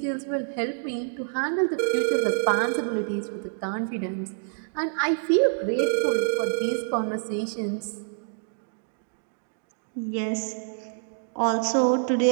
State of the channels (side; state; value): left; silent; digital silence